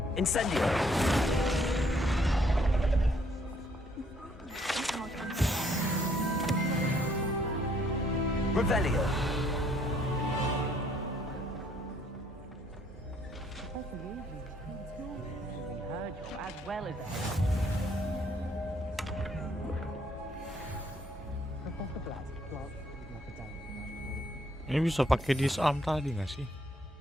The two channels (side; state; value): both; normal; correlation 0.67